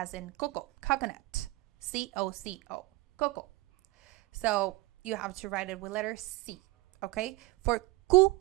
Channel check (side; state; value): left; quieter; 20.9 dB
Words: in cocoa, coconut. C-O-C-O, cocoa. So you have to write it with letter C, okay? For ku